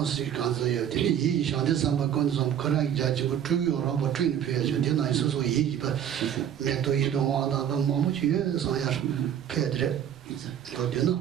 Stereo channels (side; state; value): left; quieter; 9.6 dB